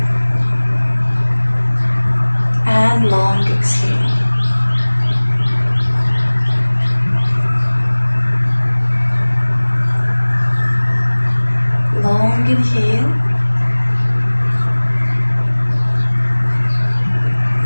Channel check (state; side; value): inverted; both; correlation -1.00